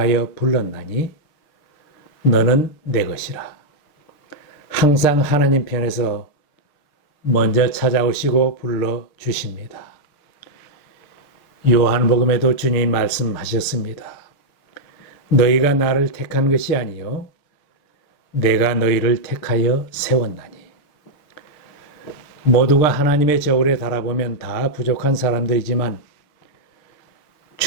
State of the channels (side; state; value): right; late; 6.7 ms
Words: 불렀나니 너는 내 것이라. 항상 하나님 편에서 먼저 찾아오시고 불러주십니다. 요한복음에도 주님이 말씀하셨습니다. 너희가 나를 택한 것이 아니요 내가 너희를 택하여 세웠나니. 모두가 하나님의 저울에 달아보면 다 부족한 사람들이지만